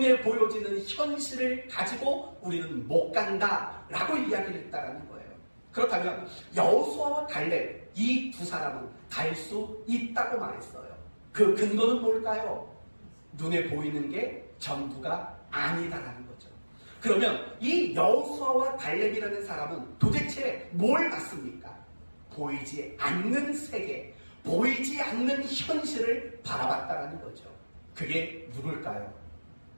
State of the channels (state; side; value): inverted; both; correlation -1.00